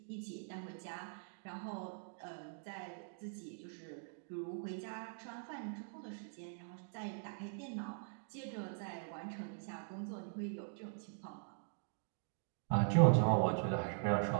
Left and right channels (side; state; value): left; silent; digital silence